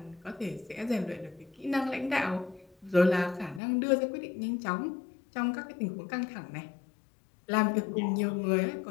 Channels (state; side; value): drops out; right; at 3.6 s